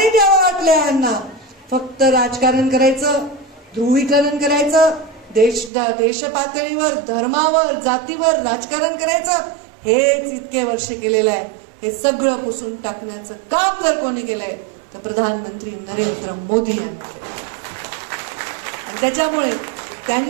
द्यावं वाटल्या यांना? फक्त राजकारण करायचं, ध्रुवीकरण करायचं, देश पातळीवर, धर्मावर, जातीवर राजकारण करायचं, हेच इतके वर्ष केलेलं आहे. हे सगळं पुसून टाकण्याचं काम जर कोणी केलंय तर प्रधानमंत्री नरेंद्र मोदी यांनी केलं. त्याच्यामुळे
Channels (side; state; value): left; drops out; at 5.7 s